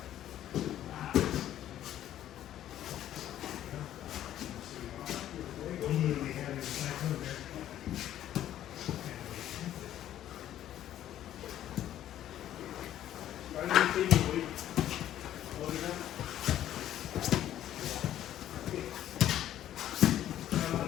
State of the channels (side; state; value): right; quieter; 11.9 dB